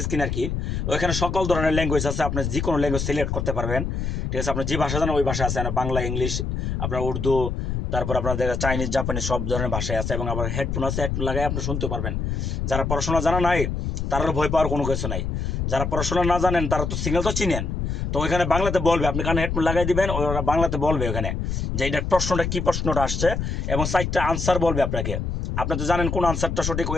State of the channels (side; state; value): left; noise; rumble, 2 dB below the sound